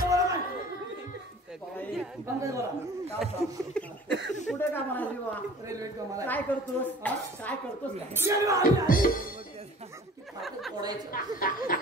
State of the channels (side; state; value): both; normal; correlation 0.46